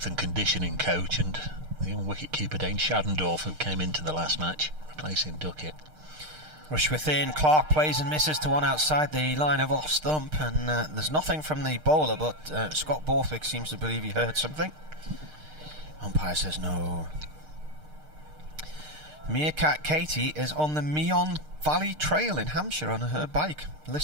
and conditioning coach, and the young wicket-keeper Dane Shadendorf, who came into the last match replacing Duckett. Rush within, Clark plays and misses to one outside the line of off stump, and there's nothing from the bowler, but Scott Borthwick seems to believe he heard something. Umpire says no. Meerkat Katie is on the Meon Valley Trail in Hampshire on her bike,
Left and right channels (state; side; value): late; left; 6.5 ms